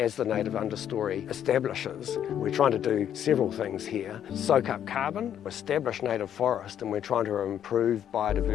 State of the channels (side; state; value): right; quieter; 9.9 dB